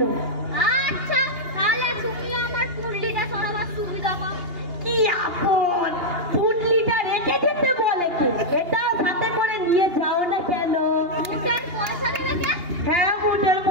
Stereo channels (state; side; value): late; left; 2.8 ms